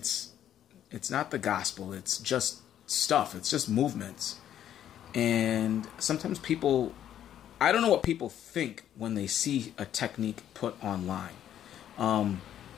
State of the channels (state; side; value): quieter; right; 10.7 dB